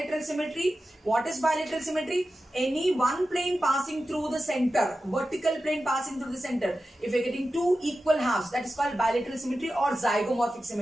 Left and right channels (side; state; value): both; normal; correlation 0.93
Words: symmetry? What is bilateral symmetry? Any one plane passing through the center, vertical plane passing through the center. If you're getting two equal halves, that is called bilateral symmetry or zygomorphic